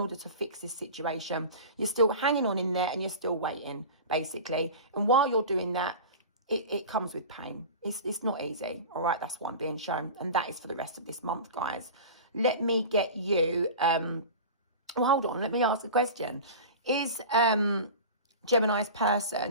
to fix this situation. You're still hanging on in there and you're still waiting, basically. And while you're doing that, it comes with pain. It's not easy. All right, that's what I'm being shown. And that is for the rest of this month, guys. Let me get you, well, hold on, let me ask a question. Is Gemini's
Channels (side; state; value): both; inverted; correlation -0.33